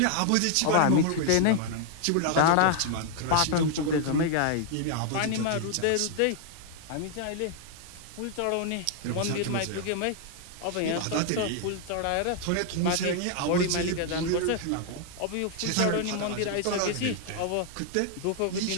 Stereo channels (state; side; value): different; both; correlation 0.00